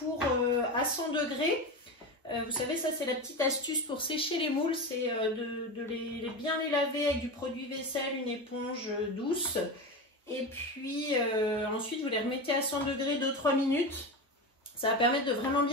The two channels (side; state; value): both; normal; correlation 0.22